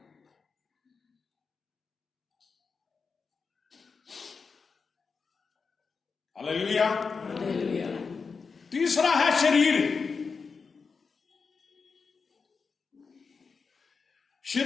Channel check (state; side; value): quieter; right; 5.1 dB